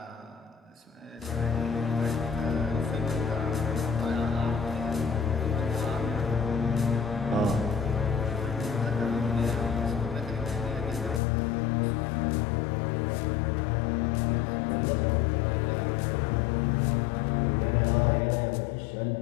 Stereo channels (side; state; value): right; drops out; at 11.2 s